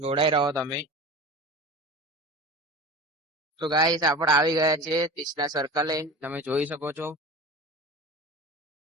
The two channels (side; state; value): both; normal; correlation 0.33